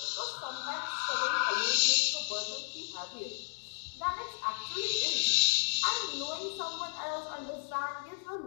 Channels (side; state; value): right; silent; digital silence